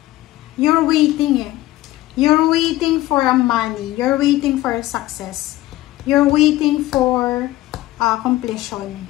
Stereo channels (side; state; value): right; quieter; 16.6 dB